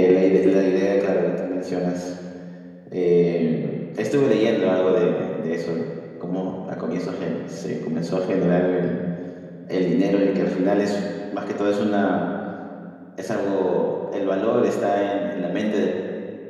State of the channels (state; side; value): identical; both; correlation 1.00